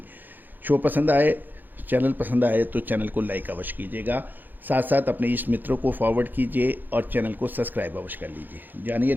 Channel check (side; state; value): left; late; 0.088 ms